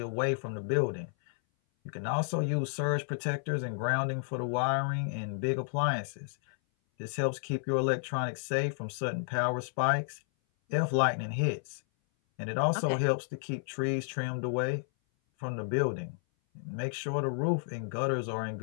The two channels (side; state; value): right; silent; 57 dB below the other